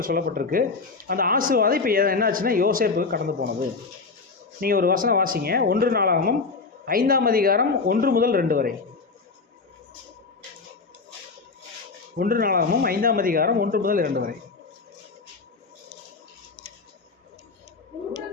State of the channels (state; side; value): quieter; right; 4.4 dB